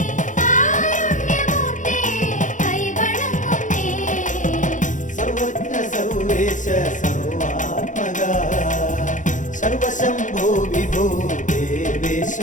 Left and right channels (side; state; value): right; late; 0.37 ms